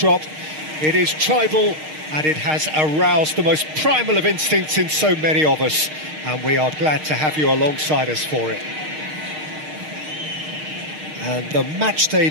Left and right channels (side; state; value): left; late; 6.5 ms